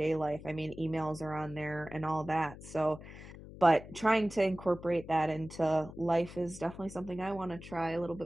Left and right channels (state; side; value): noise; left; hum, 15 dB below the sound